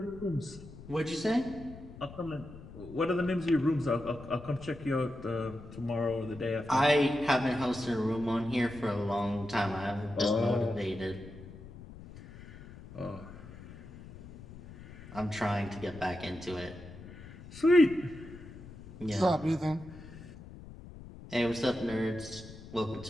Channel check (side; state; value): left; noise; rumble, 16 dB below the sound